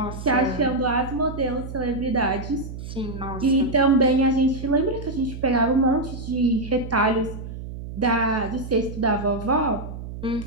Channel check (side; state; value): right; noise; hum, 10 dB below the sound